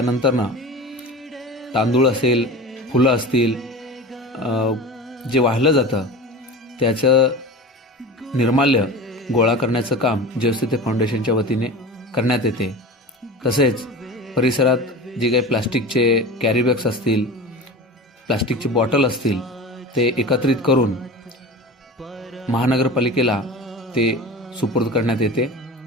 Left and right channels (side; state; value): both; normal; correlation 0.33